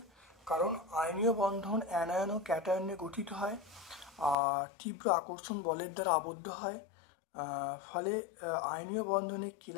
কারণ আয়নীয় বন্ধন অ্যানায়ন ও ক্যাটায়ন নিয়ে গঠিত হয়, আর তীব্র আকর্ষণ বলের দ্বারা আবদ্ধ হয়। ফলে আয়নীয়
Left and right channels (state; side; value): drops out; right; at 4.4 s